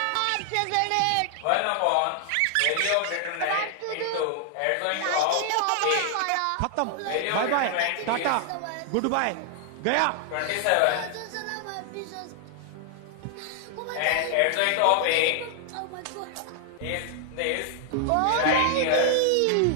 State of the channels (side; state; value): both; different; correlation 0.00